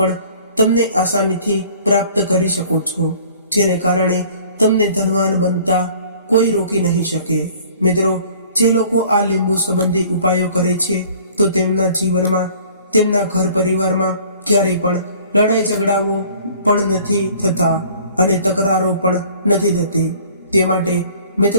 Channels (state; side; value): inverted; both; correlation -0.52